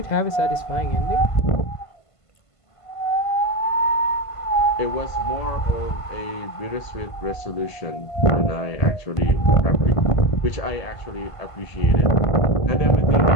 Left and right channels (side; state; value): right; late; 1.5 ms